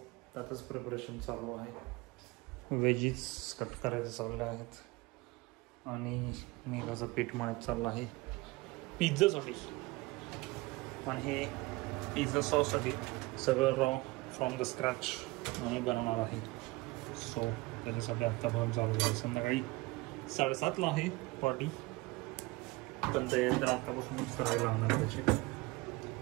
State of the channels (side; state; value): left; quieter; 22.4 dB